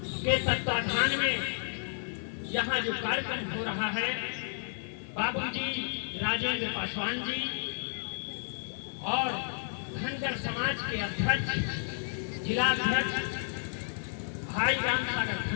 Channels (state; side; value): silent; right; digital silence